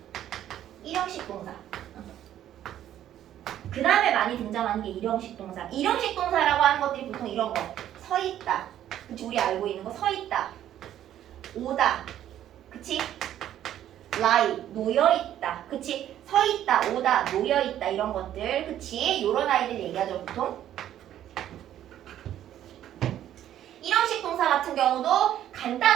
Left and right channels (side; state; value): left; quieter; 11.5 dB